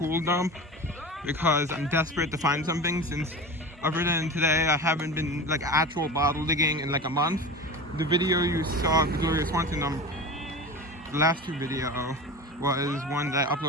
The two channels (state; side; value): normal; both; correlation 0.31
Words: dump because I'm desperate to find something, since other than today I haven't been like actual bottle digging in like a month. The video you saw of the Gloria Swanson dump, the last 2 video, was one that I